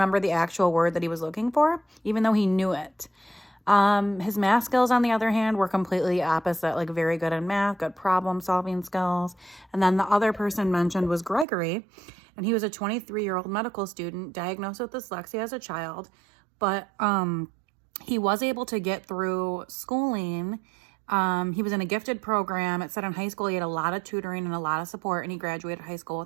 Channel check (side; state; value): left; drops out; at 11.5 s